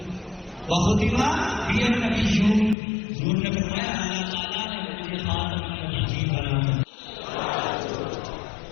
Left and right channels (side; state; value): right; drops out; at 2.8 s